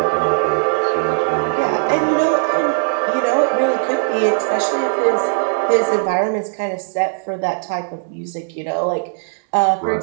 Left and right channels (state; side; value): silent; left; 65 dB below the other